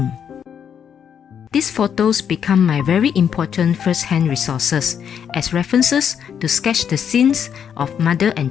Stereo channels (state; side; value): quieter; right; 8.1 dB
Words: These photos become my very important first-hand resources as references to sketch the scenes of mother and